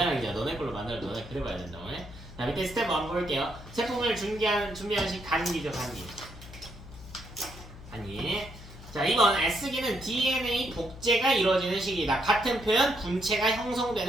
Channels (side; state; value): left; noise; hum, 16 dB below the sound